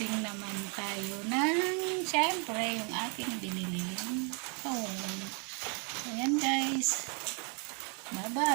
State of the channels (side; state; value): left; quieter; 36.8 dB